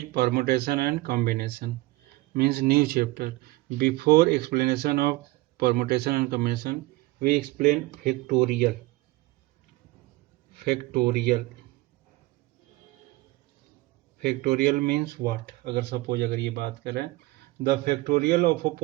permutation and combination, means new chapter. Before explanation of permutation and combination, we explain factorial. Factorial. Factorial means what? अगर suppose अगर ये बात करें, the factorial of a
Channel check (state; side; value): quieter; left; 20.6 dB